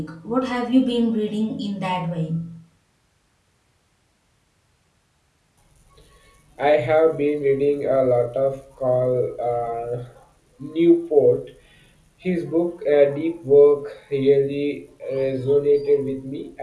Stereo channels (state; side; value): identical; both; correlation 1.00